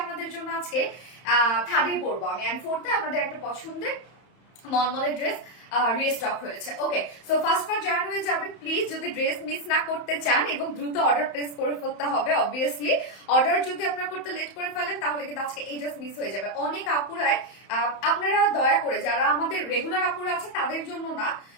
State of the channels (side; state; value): right; late; 31 ms